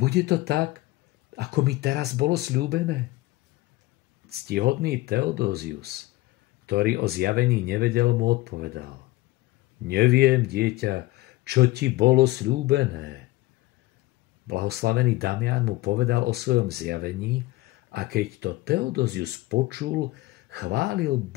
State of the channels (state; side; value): quieter; right; 18.9 dB